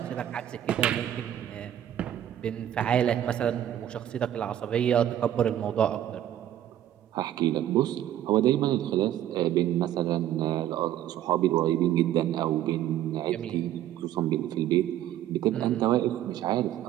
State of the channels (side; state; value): left; quieter; 11.7 dB